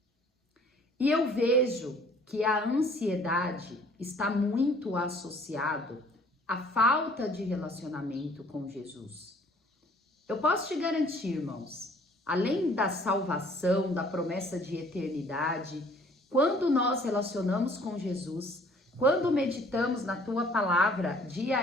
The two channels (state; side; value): normal; both; correlation 0.56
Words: E eu vejo que a ansiedade está muito associado a falta de relacionamento com Jesus. Eu posso te garantir, irmãos, além da salvação, da promessa de eternidade, quando nós relacionamos com Jesus, quando meditamos na tua palavra